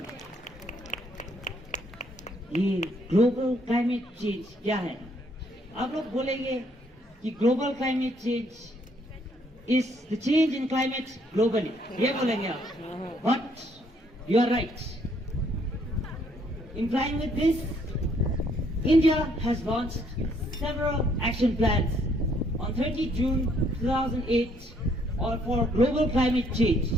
ये global climate change क्या है? आप लोग बोलेंगे कि global climate change is the change in climate globally, ये बोलेंगे आप, but you are right. In line with this, India has launched several action plans on 30 June 2008 for global climate change,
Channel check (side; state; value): both; normal; correlation 0.68